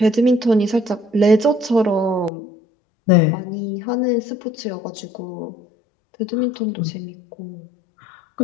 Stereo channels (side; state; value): right; drops out; at 2.3 s